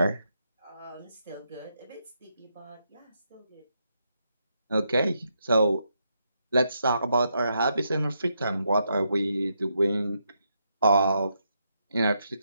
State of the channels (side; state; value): both; inverted; correlation -0.80